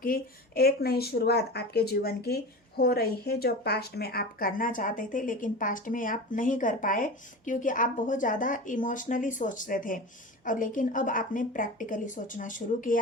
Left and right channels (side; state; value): both; normal; correlation 0.30